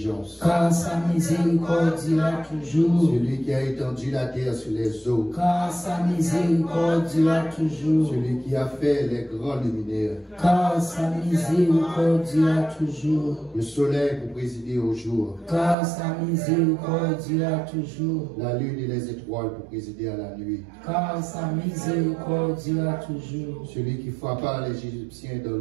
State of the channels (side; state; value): left; drops out; at 15.8 s